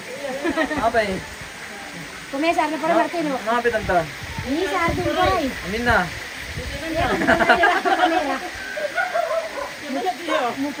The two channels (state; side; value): identical; both; correlation 1.00